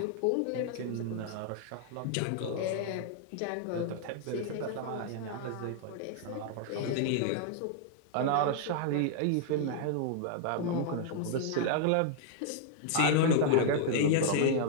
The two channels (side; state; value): both; different; correlation 0.00